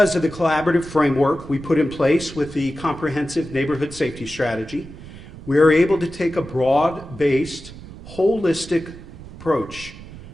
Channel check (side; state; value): right; noise; rumble, 16 dB below the sound